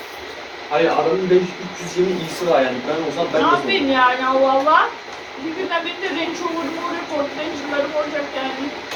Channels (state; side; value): identical; both; correlation 1.00